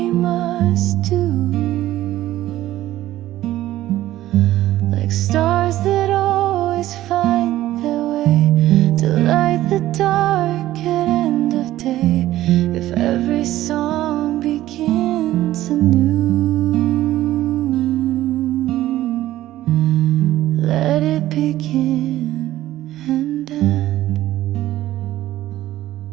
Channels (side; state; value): left; quieter; 14.7 dB